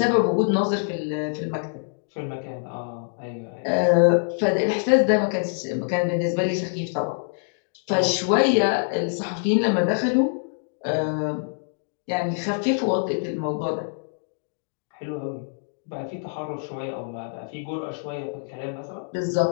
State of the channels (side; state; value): right; silent; digital silence